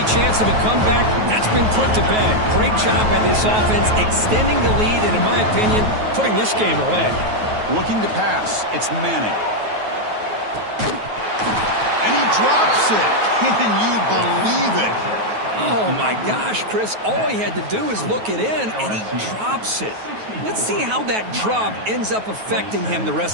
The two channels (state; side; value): late; left; 9.3 ms